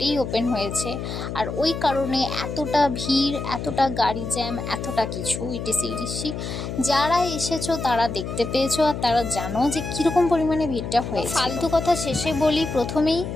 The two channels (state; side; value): noise; left; hum, 6 dB below the sound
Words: ওপেন হয়েছে। আর ওই কারণে এতটা ভিড়, এতটা গাড়ি জ্যাম, এতটা কিছু ইটিসি। যারা এসেছো তারা দেখতে পেয়েছো, আর তারা জানো যে কীরকম পরিমাণে ভিড়টা হয়েছে। ফালতু কথা শেষে বলি, প্রথমেই